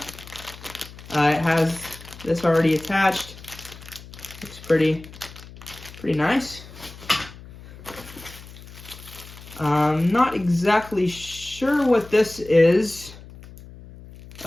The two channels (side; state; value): left; noise; hum, 17 dB below the sound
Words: has this already attached. Looks pretty nice. Not exactly sure what this is.